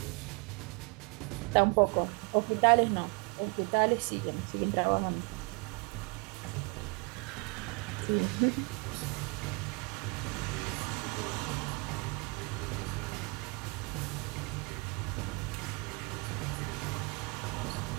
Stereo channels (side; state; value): left; quieter; 31.3 dB